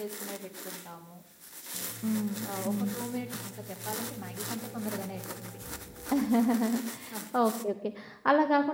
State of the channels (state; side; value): identical; both; correlation 1.00